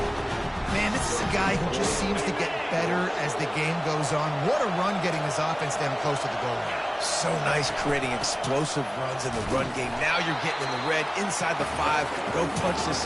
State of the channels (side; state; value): both; identical; correlation 1.00